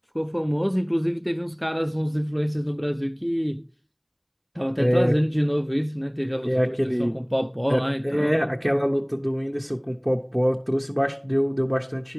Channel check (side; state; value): both; identical; correlation 1.00